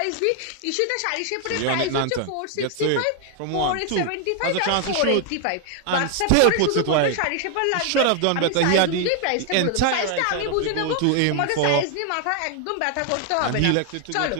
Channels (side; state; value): both; different; correlation 0.00